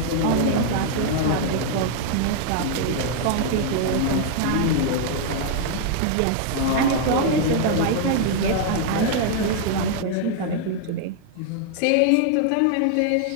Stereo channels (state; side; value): different; both; correlation -0.01